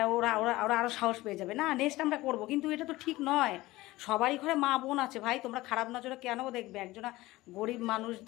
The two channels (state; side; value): quieter; right; 18.6 dB